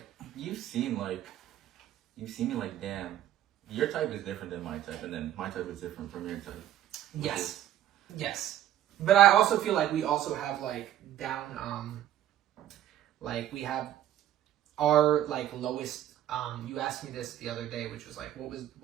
you've seen me like, damn, your type is different than my type, and then my type is different from your type. Yes. But I also feel like we also have like down, like we have. Our like lowest you asked me this the other day, which was like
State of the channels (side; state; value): left; quieter; 12.1 dB